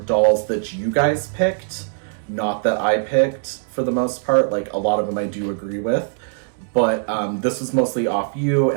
dolls that you guys picked, not that I picked for the most part. A lot of them I do agree with. But this was mostly off you,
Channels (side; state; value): left; silent; digital silence